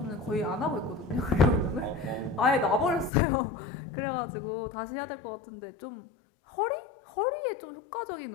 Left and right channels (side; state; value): right; drops out; at 3.1 s